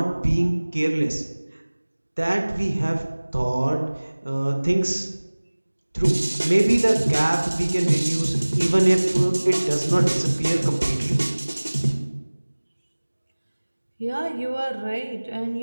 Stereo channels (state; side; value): inverted; both; correlation -1.00